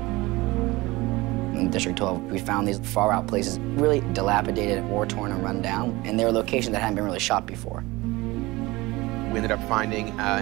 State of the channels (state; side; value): quieter; left; 21.1 dB